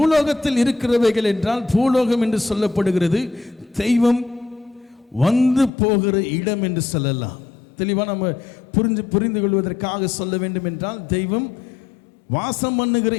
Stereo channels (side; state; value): right; drops out; at 5.7 s